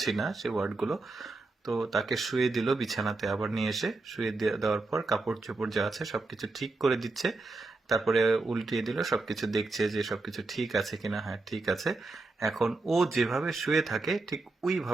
না সে ওয়ার্ডগুলো। তো তাকে শুয়ে দিল বিছানাতে, আবার নিয়ে এসে শুয়ে দেওয়ার পর কাপড় চোপড় যা আছে সবকিছু ঠিক করে দিচ্ছে। তারপরে উল্টিয়ে দিল, সবকিছু দেখছে যে সবকিছু ঠিক আছে কিনা। হ্যাঁ, ঠিক আছে। এখন ও যেভাবে শুয়ে থাকে ঠিক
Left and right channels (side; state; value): left; quieter; 3.4 dB